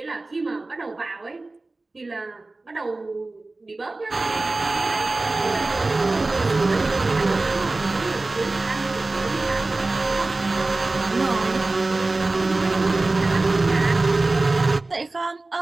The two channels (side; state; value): left; quieter; 3.2 dB